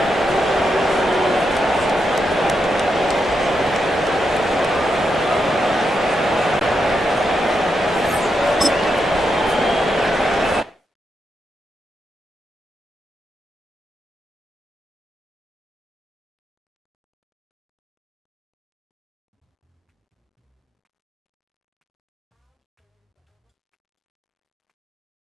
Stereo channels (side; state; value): both; normal; correlation 0.83